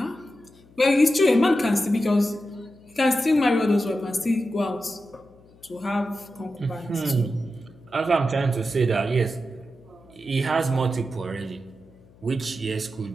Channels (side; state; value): left; noise; hum, 27 dB below the sound